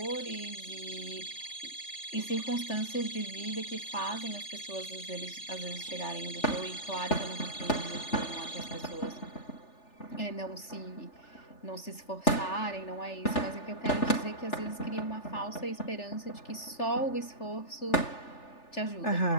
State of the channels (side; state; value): right; late; 3.4 ms